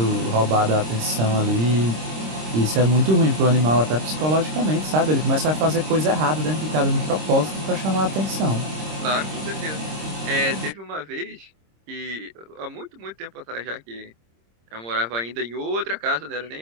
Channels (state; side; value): late; left; 26 ms